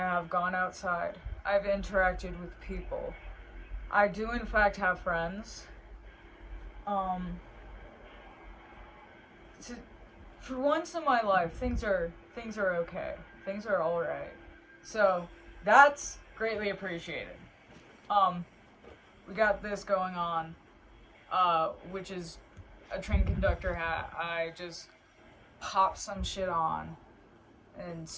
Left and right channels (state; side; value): identical; both; correlation 1.00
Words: gone outside. I've interacted with people. I do in fact have friends. Um to, for once in my life, things are okay. Things are all right. So, that's greatly appreciated. Um we got this going on, which is a train conductor hat. I just popped some shit on and